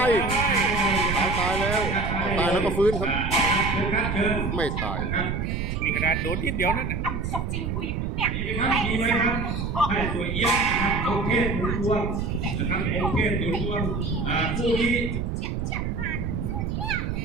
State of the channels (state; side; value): noise; right; rumble, 2 dB below the sound